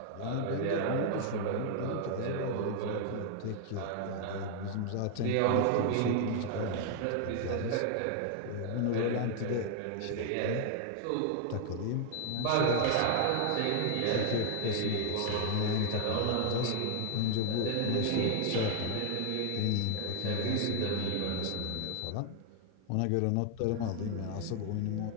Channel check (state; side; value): different; both; correlation 0.00